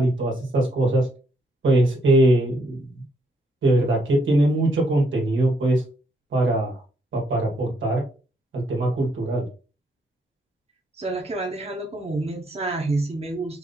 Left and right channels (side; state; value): both; normal; correlation 0.73